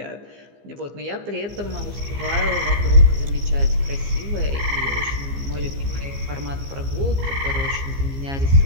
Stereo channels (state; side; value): late; left; 15 ms